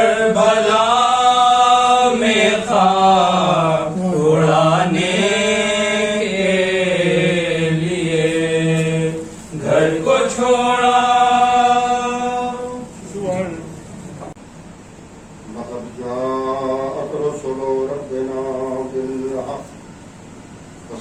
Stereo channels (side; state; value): both; identical; correlation 1.00